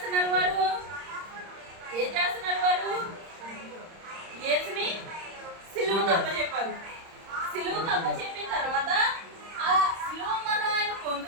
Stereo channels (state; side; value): late; left; 30 ms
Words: వారు? యేసుని సిలువకు అప్పచెప్పారు. సిలువకు అప్పచెప్పిన తర్వాత ఆ సిలువ మరణం ఆయన